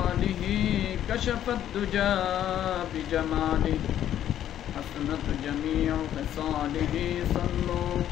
كشف الدجى بجماله حسنت جميع خصاله صلوا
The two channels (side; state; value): right; quieter; 11.1 dB